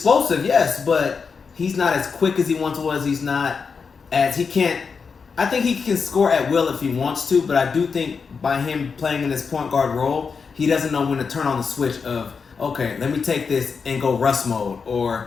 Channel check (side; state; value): right; quieter; 5.5 dB